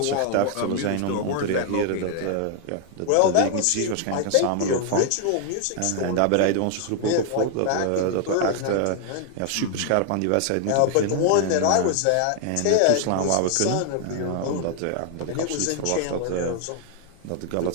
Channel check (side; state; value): both; different; correlation 0.00